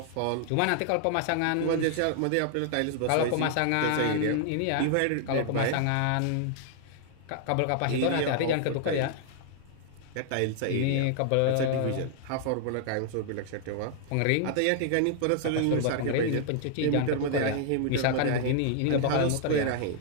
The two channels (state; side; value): different; both; correlation 0.00